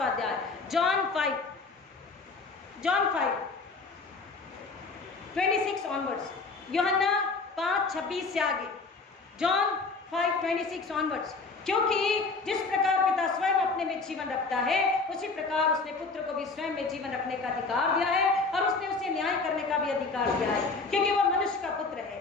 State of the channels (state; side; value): quieter; right; 4.1 dB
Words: अध्याय, जॉन 5:26 ऑनवर्ड्स, यूहन्ना 5:26 से आगे, जॉन 5:26 ऑनवर्ड्स। क्योंकि जिस प्रकार पिता स्वयं अपने में जीवन रखता है उसी प्रकार उसने पुत्र को भी स्वयं में जीवन रखने का अधिकार दिया है, और उसने उसे न्याय करने का भी अधिकार दिया है, क्योंकि वह मनुष्य का पुत्र है।